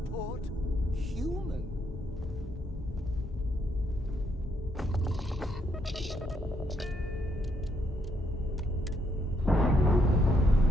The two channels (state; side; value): normal; both; correlation 0.75